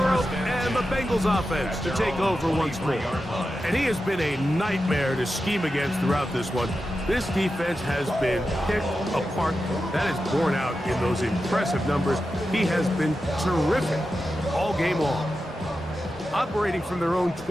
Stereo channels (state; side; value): normal; both; correlation 0.91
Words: and the Bengals offense to take over once more. And he has been a nightmare to scheme against throughout this one. This defense has been picked apart. That is borne out in those impressive numbers. He has been terrific all game long. Operating from their own